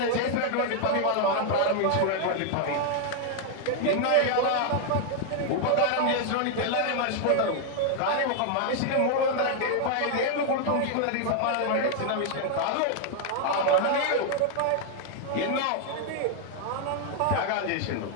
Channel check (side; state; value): both; different; correlation 0.00